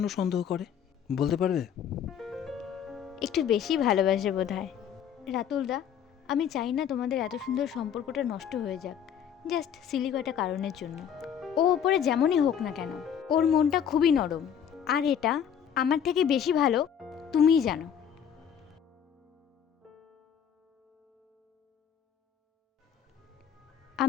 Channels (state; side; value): quieter; right; 8.5 dB